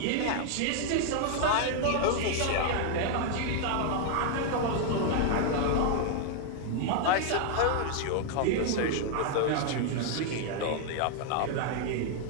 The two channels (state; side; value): different; both; correlation 0.00